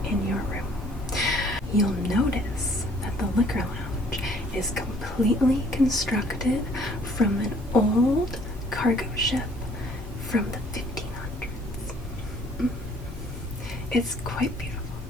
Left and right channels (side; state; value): both; normal; correlation 0.59